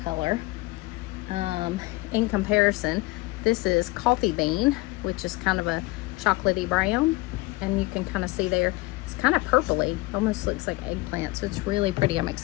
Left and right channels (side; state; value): right; quieter; 21.6 dB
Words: color. In comparison, this is coffee bean, which is kind of a chocolatey brown. And you can kind of see there, it's kind of purpley. Almost looks like eggplant. So it's really pretty. I'm